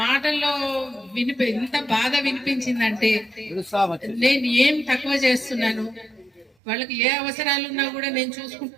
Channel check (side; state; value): left; drops out; at 6.5 s